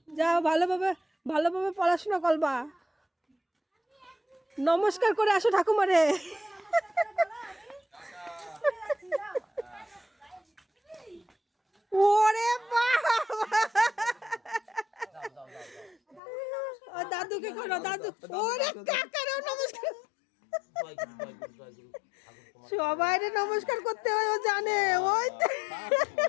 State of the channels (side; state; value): right; drops out; at 16.2 s